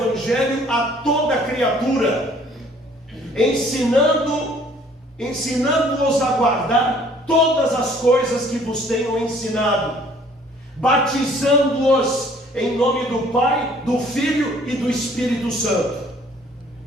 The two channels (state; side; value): normal; both; correlation 0.57